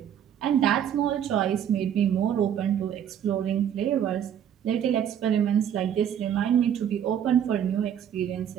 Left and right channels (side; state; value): left; quieter; 9.4 dB